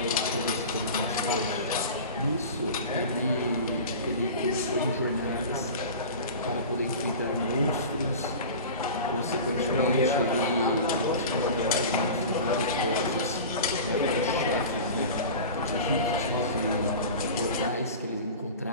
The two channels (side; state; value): both; inverted; correlation -0.34